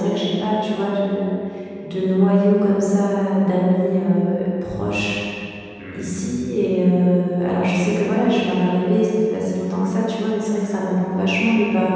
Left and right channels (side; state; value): both; identical; correlation 1.00